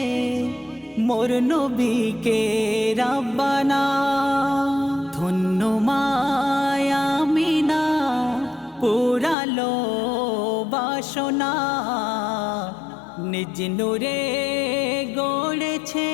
মোর নবীকে রাব্বানা ধন্য মায়া মিনা পুরালো বাসনা নিজ নূরে গড়েছে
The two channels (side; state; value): right; drops out; at 9.3 s